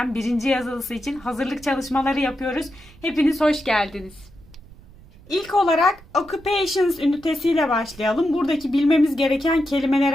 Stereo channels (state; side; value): noise; right; rumble, 23 dB below the sound